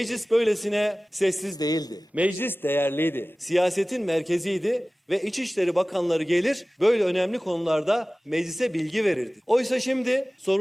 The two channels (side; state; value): both; normal; correlation 0.98